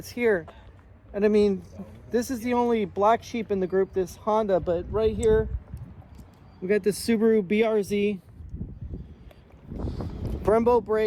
here. And I mean, this is the only black sheep in the group, this Honda, but right here we got this Subaru BRZ, Brembo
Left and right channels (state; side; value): identical; both; correlation 1.00